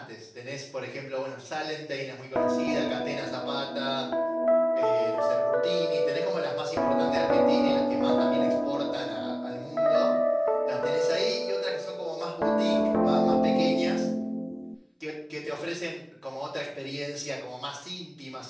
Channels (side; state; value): both; identical; correlation 1.00